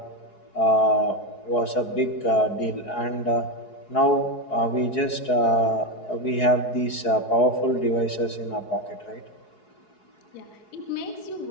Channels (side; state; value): right; late; 4.7 ms